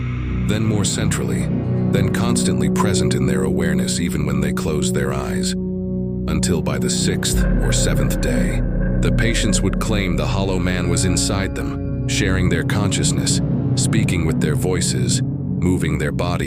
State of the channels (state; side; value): identical; both; correlation 1.00